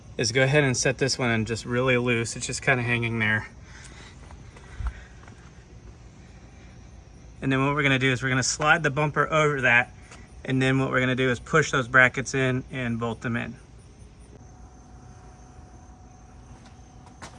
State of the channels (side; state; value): both; identical; correlation 1.00